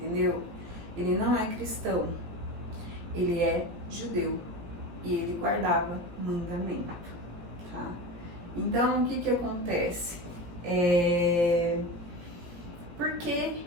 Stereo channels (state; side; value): late; left; 17 ms